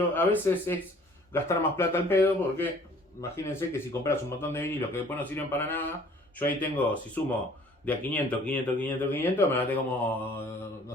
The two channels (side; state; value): both; normal; correlation 0.54